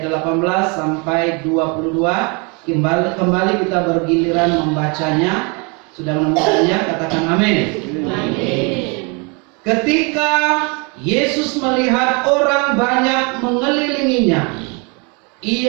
18 sampai 22. Kembali kita bergiliran membacanya. Sudah menemukannya, katakan amin. Amin. Ketika Yesus melihat orang banyak mengelilinginya,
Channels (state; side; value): quieter; left; 31.8 dB